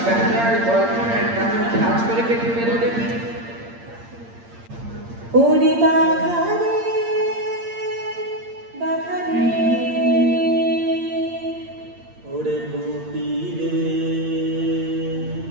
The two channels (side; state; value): left; late; 8.7 ms